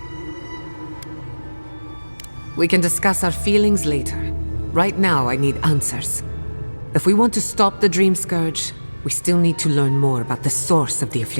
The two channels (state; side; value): inverted; both; correlation -1.00